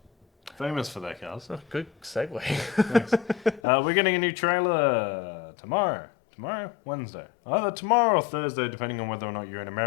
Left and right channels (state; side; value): drops out; right; at 3.6 s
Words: famous for their cars. Oh, good segue. Thanks. We're getting a new trailer tomorrow. Tomorrow? Wednesday. Either tomorrow or Thursday, depending on whether or not you're in